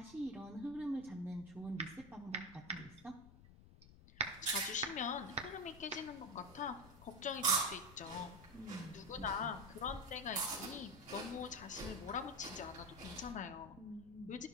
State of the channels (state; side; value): noise; left; rumble, 19 dB below the sound